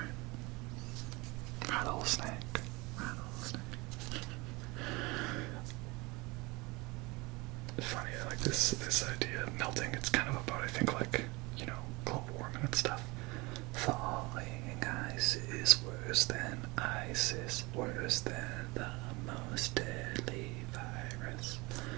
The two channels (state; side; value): quieter; left; 24.6 dB